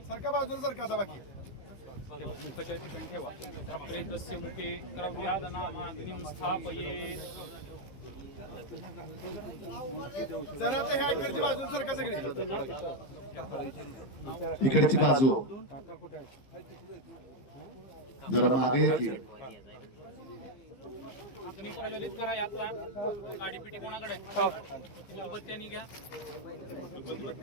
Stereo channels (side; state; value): right; late; 15 ms